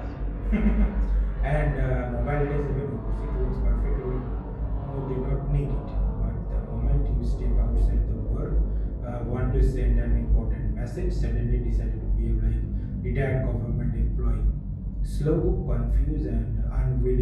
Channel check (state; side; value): identical; both; correlation 1.00